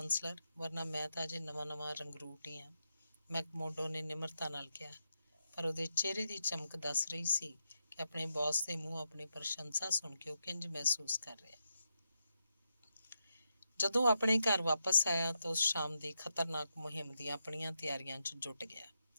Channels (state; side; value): inverted; both; correlation -0.85